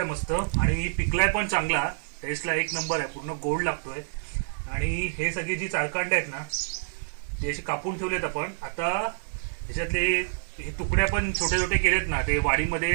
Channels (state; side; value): silent; left; 60 dB below the other